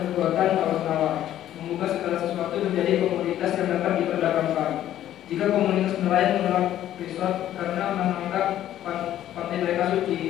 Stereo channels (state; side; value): quieter; right; 12.1 dB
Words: perbuatan tawar-menawar, mengubah segala sesuatu menjadi komoditas yang dapat diperdagangkan. Jika komunitas nelayan menolak risot karena menganggap pantai mereka